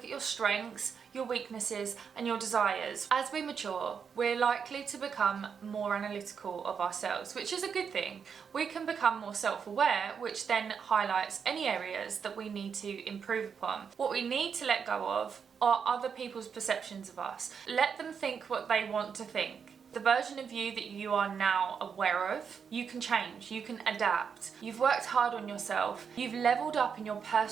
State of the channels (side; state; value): left; quieter; 6.6 dB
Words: at your strengths, your weaknesses, and your desires. As we mature, we're likely to become more analytical of ourselves, which is a good thing. We can become more self-aware, which then highlights any areas that we need to improve upon. What we need to let go of are other people's perceptions of us. Let them think what they want to think. The version of you that you are now aware of, you can change, you can adapt. You've worked hard on yourself, you've leveled up in your